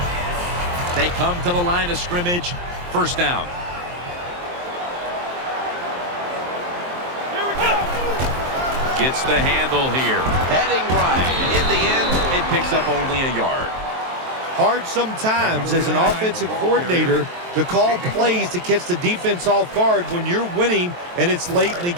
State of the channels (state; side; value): late; left; 23 ms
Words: They come to the line of scrimmage. First down. Gets the handle here. Heading right. In the end, it picks up only a yard. Hard sometimes as an offensive coordinator to call plays to catch the defense off guard when you're winning and it's late in the